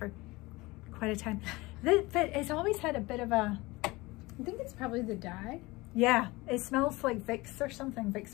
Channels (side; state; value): right; quieter; 21.9 dB